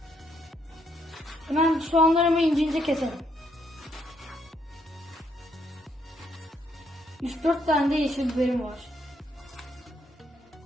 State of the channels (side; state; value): both; normal; correlation 0.73